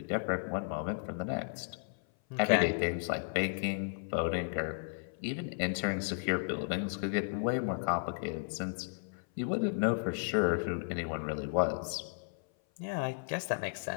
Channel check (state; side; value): silent; right; 55 dB below the other